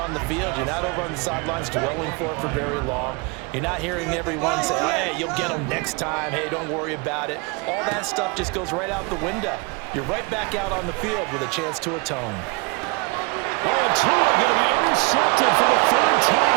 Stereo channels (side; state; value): left; quieter; 29.0 dB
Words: on the field. You're not over on the sidelines dwelling for it for very long. You're not hearing everyone say, oh, hey, you'll get them next time. Hey, don't worry about it. All that stuff just goes right out the window. You're right back out on the field with a chance to atone. And Tua going to be intercepted for the 3rd